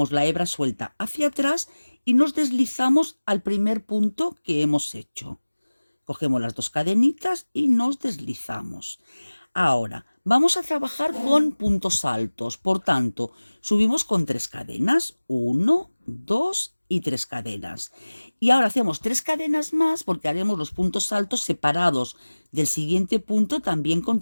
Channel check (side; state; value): both; inverted; correlation -1.00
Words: la hebra suelta hacia atrás y nos deslizamos al primer punto que hemos hecho. Cogemos las dos cadenitas y nos deslizamos. Ahora, vamos a trabajar con puntos altos, por tanto, subimos con 3 cadenas, 1, 2 y 3 cadenas. Y ahora hacemos 3 cadenas más porque haremos los puntos altos separados del siguiente punto también con